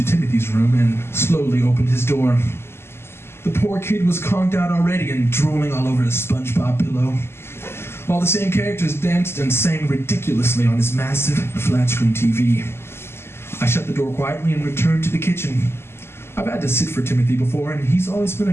Timothy's room and slowly opened his door. The poor kid was conked out already and drooling all over a SpongeBob pillow, while the same characters danced and sang ridiculously on his massive flat-screen TV. I shut the door quietly and returned to the kitchen. I've had to sit for Timothy before, and he's always been a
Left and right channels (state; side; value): late; right; 0.12 ms